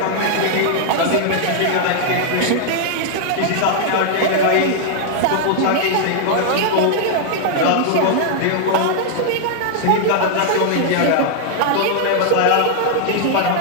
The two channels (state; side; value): different; both; correlation -0.01